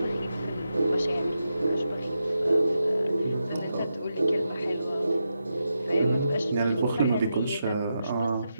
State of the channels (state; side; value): inverted; both; correlation -0.87